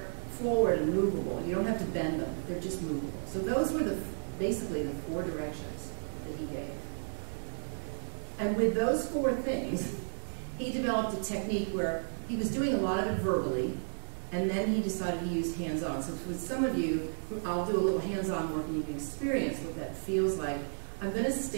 forward and movable. You don't have to bend them. They're just movable. So those were basically the 4 directions that he gave. And with those 4 things, he developed a technique where he was doing a lot of it verbally, and then he decided to use hands-on. So with some of you, I'll do a little hands-on work and you can experience what that feels like. I'm going to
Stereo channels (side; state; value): left; silent; digital silence